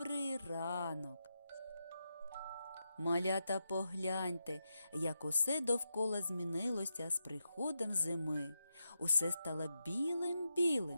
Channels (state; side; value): inverted; both; correlation -0.87